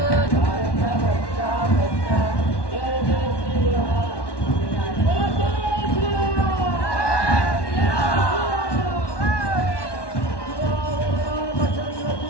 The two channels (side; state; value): right; late; 1.1 ms